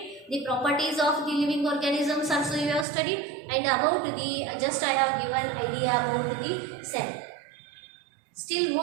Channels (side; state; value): left; drops out; at 2.9 s